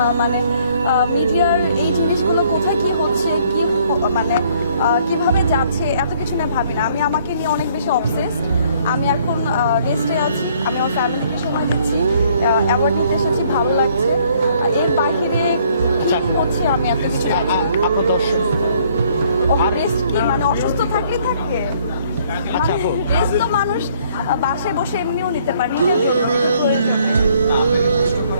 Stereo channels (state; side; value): inverted; both; correlation -0.63